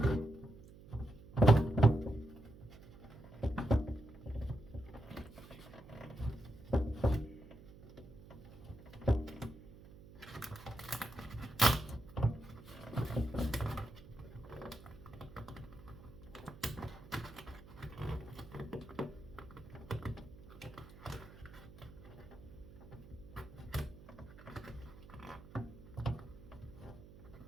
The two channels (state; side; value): noise; right; hum, 18 dB below the sound